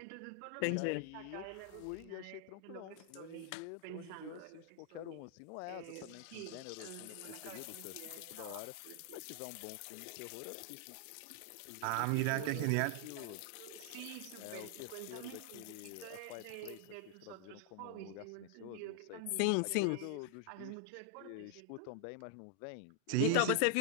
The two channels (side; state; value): both; different; correlation 0.00